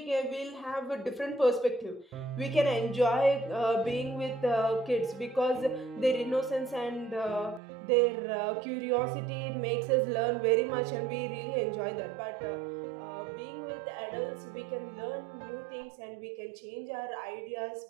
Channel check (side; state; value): left; drops out; at 7.6 s